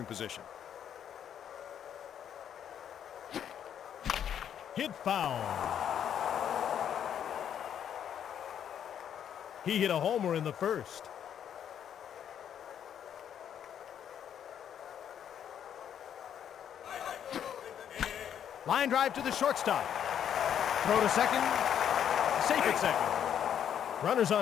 position. Hit foul. He hit a homer in the first. Line drive to the shortstop. Throw to second. Safe at second. Runners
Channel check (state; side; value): quieter; right; 9.2 dB